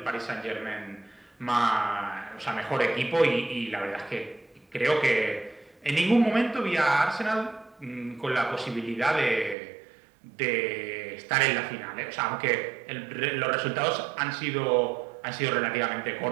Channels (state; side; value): drops out; left; at 9.6 s